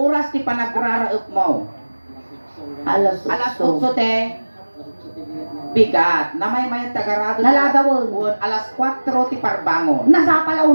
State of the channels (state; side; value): inverted; both; correlation -1.00